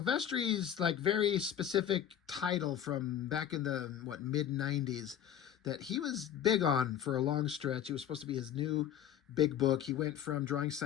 like very specific title from back in the mid '90s that he was big on for a long stretch. It was supposed to be his new big book. He went from drawing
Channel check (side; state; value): right; quieter; 9.9 dB